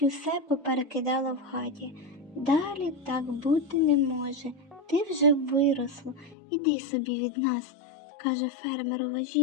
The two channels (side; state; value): right; drops out; at 6.4 s